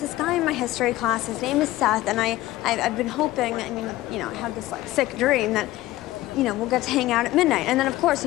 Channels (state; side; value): quieter; right; 16.8 dB